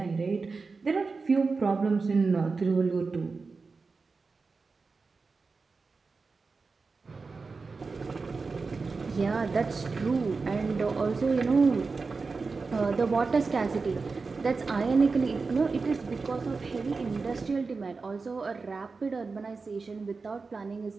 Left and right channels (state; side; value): quieter; left; 4.3 dB